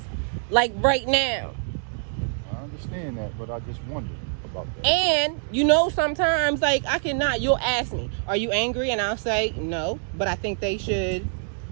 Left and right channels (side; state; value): left; silent; digital silence